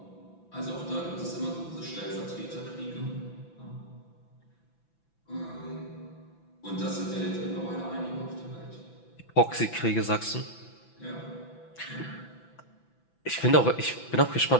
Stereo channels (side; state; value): right; late; 5.9 ms